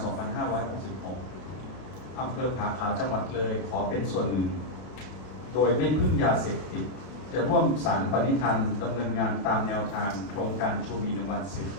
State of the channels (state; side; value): late; right; 32 ms